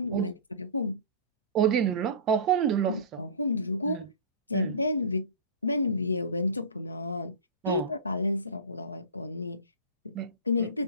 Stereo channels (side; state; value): both; inverted; correlation -0.32